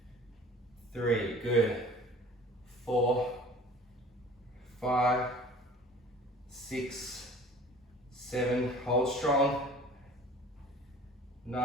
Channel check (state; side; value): normal; both; correlation 0.46